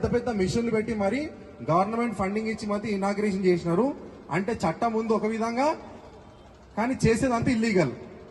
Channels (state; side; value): identical; both; correlation 1.00